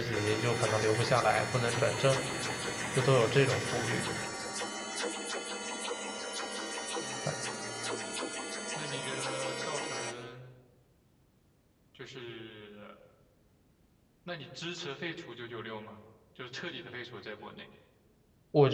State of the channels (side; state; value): both; identical; correlation 1.00